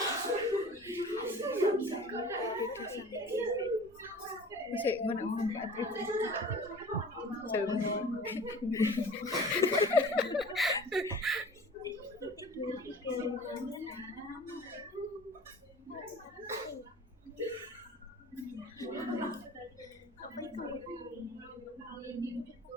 Masih mana orang Patrick?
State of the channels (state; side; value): normal; both; correlation 0.43